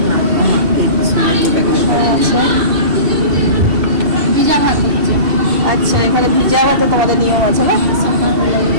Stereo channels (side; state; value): left; late; 2.7 ms